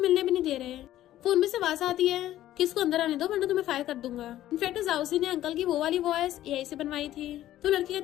भी नहीं दे रहे। फोन में से आवाज आती है कि इसको अंदर आने दो वरना तुम्हें फायर कर दूंगा। इनफैक्ट जाउसी ने अंकल की वो वाली वॉइस एआई से बनवाई थी। तो लड़की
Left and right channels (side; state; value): right; quieter; 13.5 dB